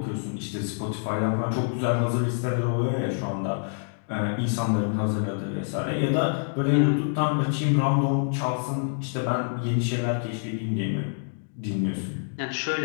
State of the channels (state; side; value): silent; right; digital silence